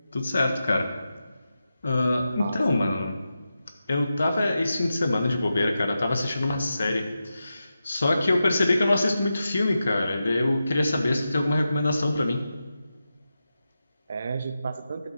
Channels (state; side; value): inverted; both; correlation -0.90